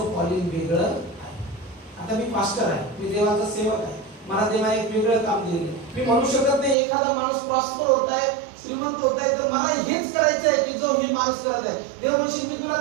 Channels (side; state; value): left; drops out; at 6.8 s